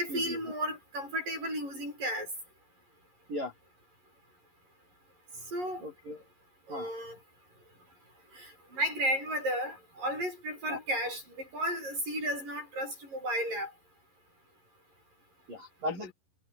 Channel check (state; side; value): late; left; 11 ms